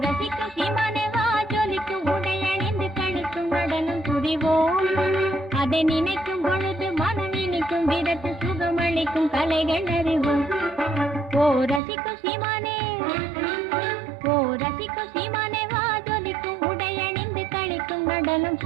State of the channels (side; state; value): left; drops out; at 11.8 s